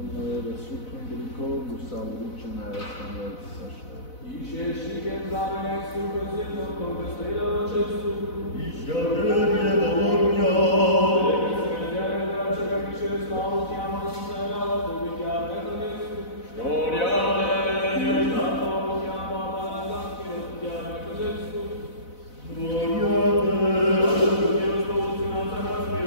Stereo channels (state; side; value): late; right; 4.0 ms